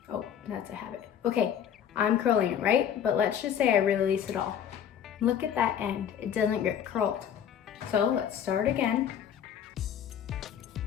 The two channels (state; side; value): quieter; right; 9.0 dB